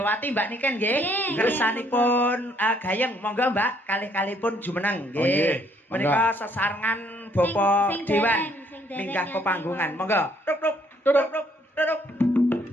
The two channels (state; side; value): normal; both; correlation 0.66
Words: Mbak Niken nggih. Kersanipun gayeng. Monggo Mbak, kalih-kalihipun jumeneng nggih. Menika sesarengan Bapak Dewan minggah pepanggungan. Monggo. Tuk.